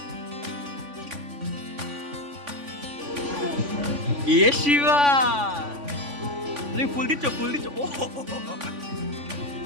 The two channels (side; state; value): left; late; 3.5 ms